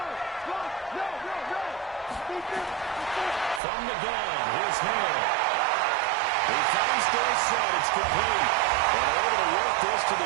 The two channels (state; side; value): drops out; left; at 3.6 s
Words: From the gun, here's Hill. He finds Dorsett. It's complete. And able to work this to